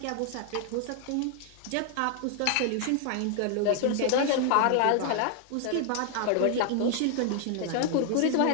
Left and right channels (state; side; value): different; both; correlation 0.00